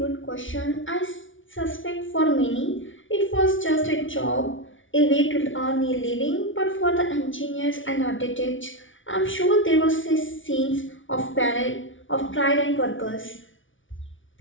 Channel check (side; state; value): right; late; 0.56 ms